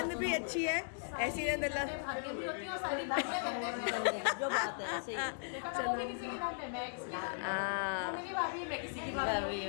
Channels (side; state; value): right; silent; digital silence